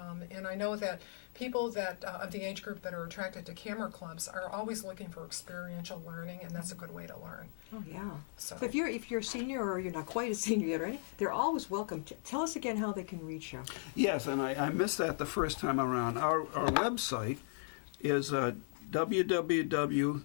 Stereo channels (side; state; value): right; silent; digital silence